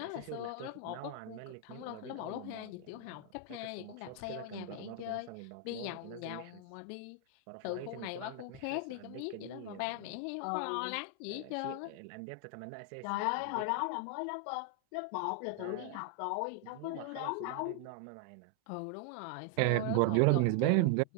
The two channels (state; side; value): different; both; correlation 0.00